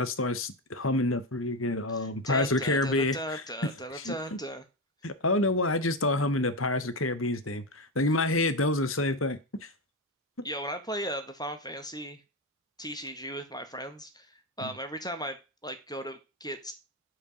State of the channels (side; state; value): both; normal; correlation 0.13